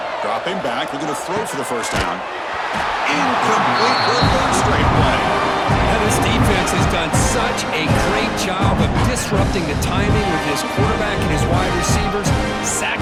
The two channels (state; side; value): identical; both; correlation 1.00